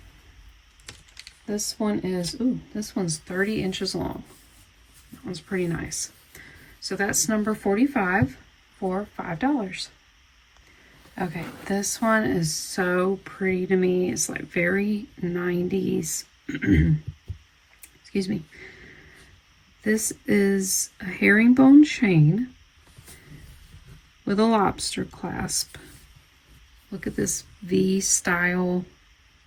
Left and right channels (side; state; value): both; identical; correlation 1.00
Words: This one is, ooh, this one's 30 inches long. That one's pretty nice. So that's number 45 for $5. Okay, this one is so pretty to me. It's like very 90s. Excuse me. This is a herringbone chain with a lobster clasp. Look at this V style